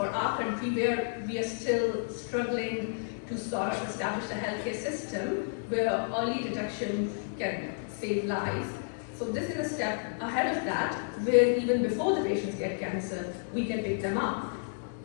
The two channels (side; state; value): right; silent; digital silence